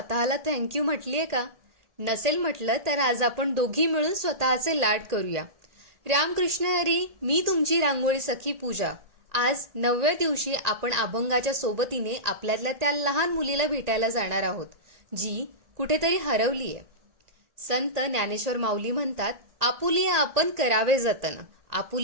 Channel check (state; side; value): late; left; 1.8 ms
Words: थँक्यू म्हटलीये का? नसेल म्हटलं तर आज आपण दोघी मिळून स्वतःचे लाड करूया. रामकृष्ण हरी. मी तुमची रांगोळी सखी पूजा. आज 9व्या दिवशी आपण अभंगाच्या सोबतीने आपल्यातल्या त्या लहान मुलीला भेटायला जाणार आहोत, जी कुठेतरी हरवलीये. संत ज्ञानेश्वर माऊली म्हणतात, आपुलिया आपण करावे जतन.